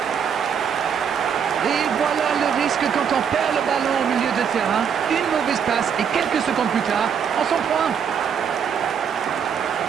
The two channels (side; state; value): left; quieter; 7.5 dB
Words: Et voilà le risque quand on perd le ballon au milieu de terrain. Une mauvaise passe et quelques secondes plus tard, on s'en prend.